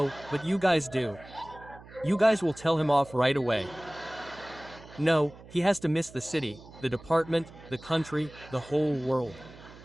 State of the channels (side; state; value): right; noise; hum, 19 dB below the sound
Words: but you guys do. You guys will tell him off right away. No, he has to miss the city, the department, the country, the whole world.